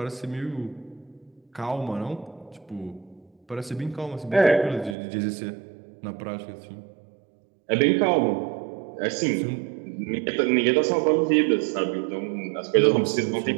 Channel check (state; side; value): drops out; left; at 5.0 s